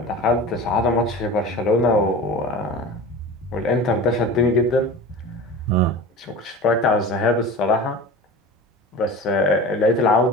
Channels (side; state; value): both; normal; correlation 0.34